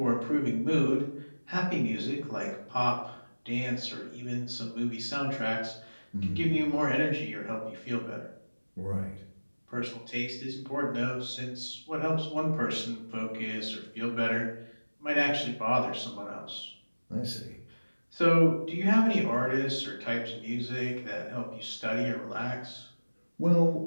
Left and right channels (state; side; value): inverted; both; correlation -1.00